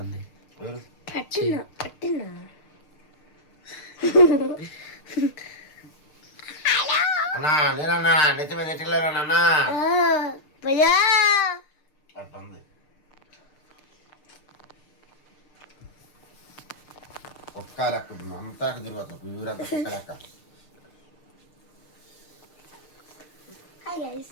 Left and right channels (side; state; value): right; late; 6.6 ms